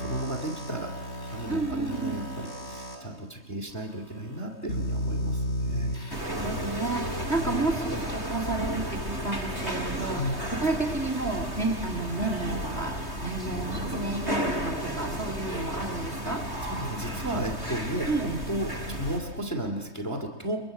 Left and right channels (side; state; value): right; late; 3.2 ms